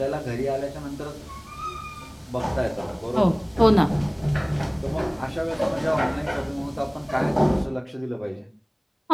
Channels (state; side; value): identical; both; correlation 1.00